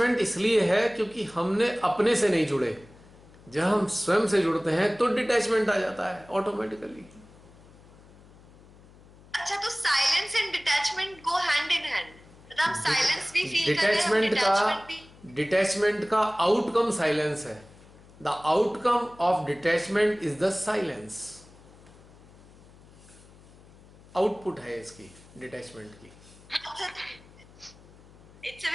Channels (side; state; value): left; noise; hum, 24 dB below the sound